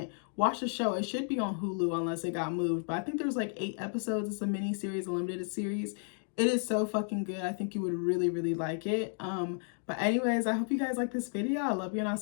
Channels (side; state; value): right; silent; 56 dB below the other